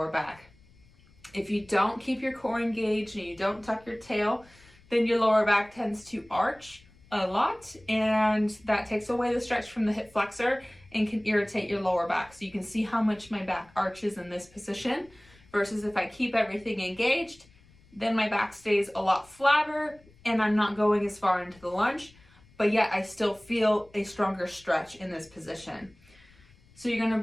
back. If you don't keep your core engaged and you don't tuck your tail, then your lower back tends to arch a lot, and that takes away the stretch from the hip flexor and can irritate your lower back. So you can see how much my back arches in this position versus if I keep everything engaged, then my back stays a lot flatter and I'm not going as far into the lunge, but yet I still feel a stronger stretch in this position. So you're going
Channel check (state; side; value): noise; left; rumble, 28 dB below the sound